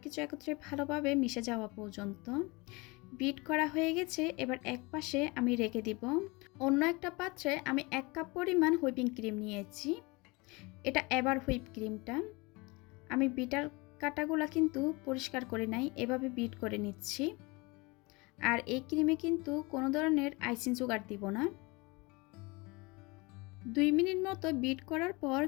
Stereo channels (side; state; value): right; quieter; 25.7 dB